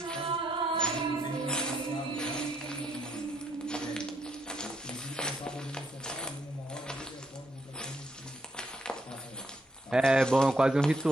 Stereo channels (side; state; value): both; normal; correlation 0.75